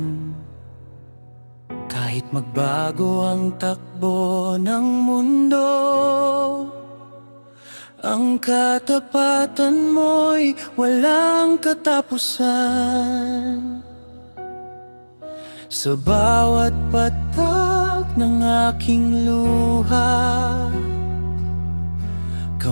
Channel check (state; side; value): inverted; both; correlation -1.00